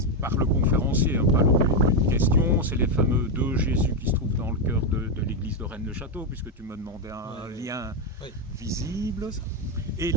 par le conférencier, hein, pas une question, c'est les fameux deux Jésus qui se trouvent dans le cœur de l'église de Rennes-le-Château, puisque tu me demandais un lien visible. Et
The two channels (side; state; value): both; normal; correlation 0.06